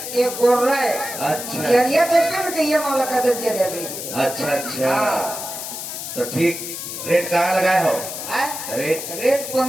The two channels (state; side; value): noise; left; hiss, 7 dB below the sound